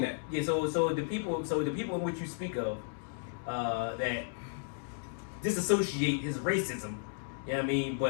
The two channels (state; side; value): silent; right; digital silence